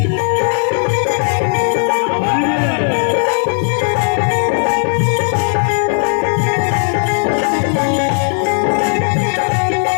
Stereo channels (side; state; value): right; silent; 55 dB below the other